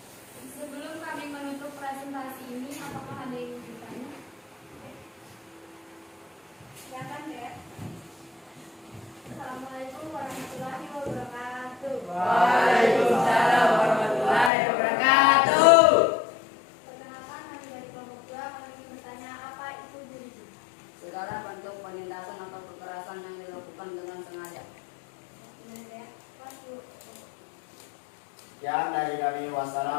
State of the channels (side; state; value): right; drops out; at 14.5 s